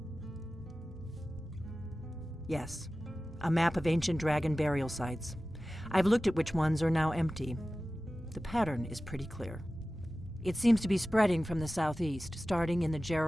Yes, a map of ancient dragon burial sites. I've looked at which ones are now empty. The pattern is pretty clear. It seems to be spreading from the southeast, starting in the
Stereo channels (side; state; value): both; normal; correlation 0.96